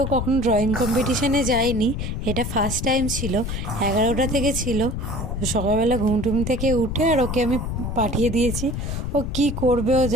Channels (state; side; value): noise; left; rumble, 4 dB below the sound